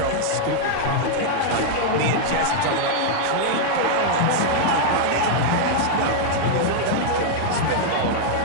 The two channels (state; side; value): different; both; correlation -0.01